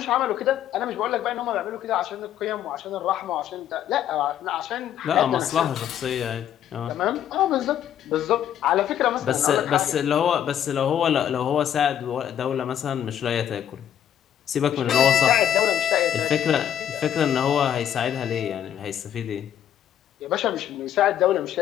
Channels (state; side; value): quieter; right; 10.1 dB